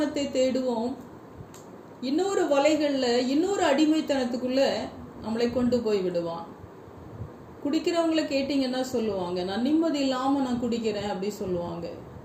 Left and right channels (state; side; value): identical; both; correlation 1.00